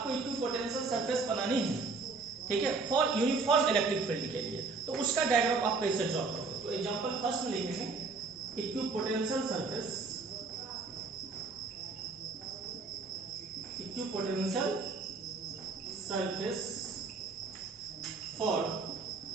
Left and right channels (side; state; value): left; quieter; 4.1 dB